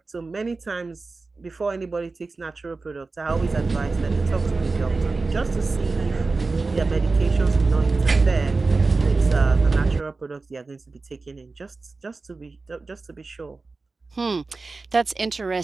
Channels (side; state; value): left; quieter; 3.8 dB